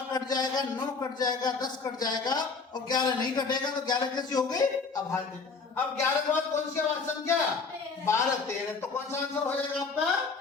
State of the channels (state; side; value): quieter; right; 4.7 dB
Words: कट जाएगा, 9 कट जाएगा, 10 कट जाएगा, और 11 नहीं कटेगा। तो 11 कैसी हो गई? अभाज्य। अब 11 के बाद कौन सी अभाज्य संख्या? 12, 13। तो कौन सा आंसर हो जाएगा आपका?